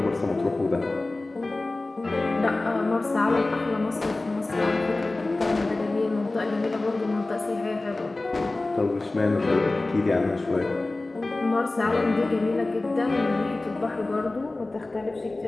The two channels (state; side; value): quieter; right; 3.0 dB